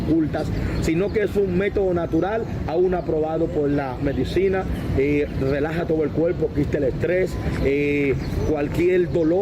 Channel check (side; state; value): both; identical; correlation 1.00